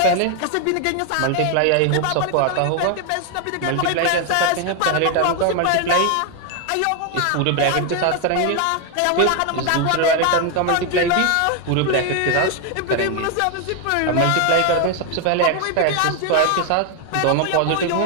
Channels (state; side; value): different; both; correlation 0.01